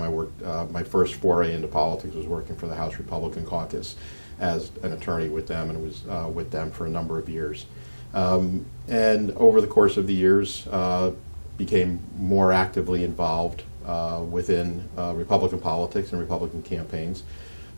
I worked, my first foray into politics was working for the House Republican Caucus as an attorney with them, and was with them for a number of years. And over the course of the years, became more actively involved within Republican politics and Republican campaigns.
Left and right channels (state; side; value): inverted; both; correlation -1.00